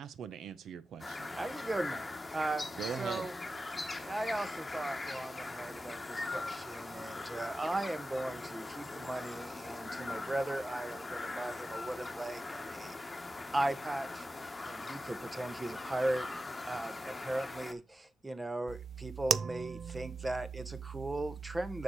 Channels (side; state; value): both; normal; correlation 0.93